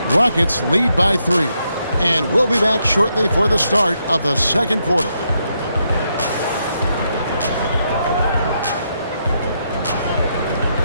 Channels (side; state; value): both; inverted; correlation -0.79